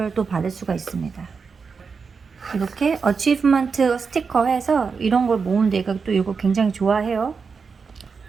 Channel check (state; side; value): quieter; left; 5.3 dB